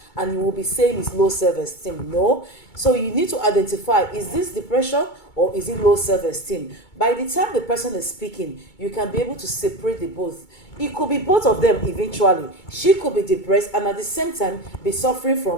and you will be saying it's low self-esteem. No. So you need to identify, is this depression or is it low self-esteem? By the time the person is speaking, you can be able to separate the both. It could be both of them eventually. She could be depressed and at the same time be suffering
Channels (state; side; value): late; right; 2.2 ms